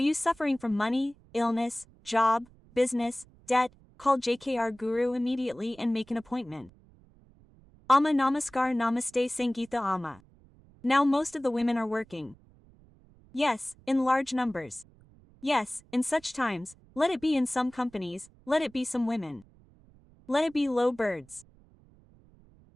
suffering from money, illness, job, business, debt? Call JKR Guru immediately and make an appointment. Amma Namaskar Namaste Sangeeta Amma. Now most of the women are working. Yes, in large numbers. Yes, in such times, let it be in some companies, let it be some women. Let it be low birds.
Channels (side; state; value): right; noise; rumble, 27 dB below the sound